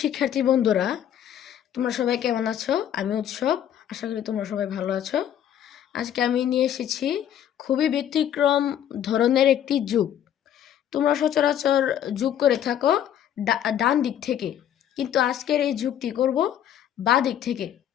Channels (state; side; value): quieter; right; 10.2 dB